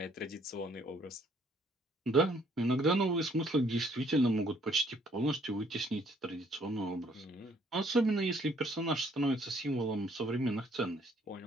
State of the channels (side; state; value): both; normal; correlation 0.64